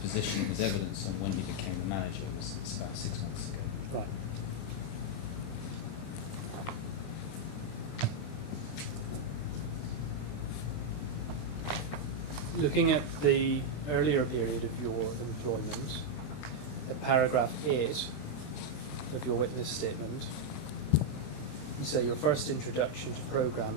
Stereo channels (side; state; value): right; late; 29 ms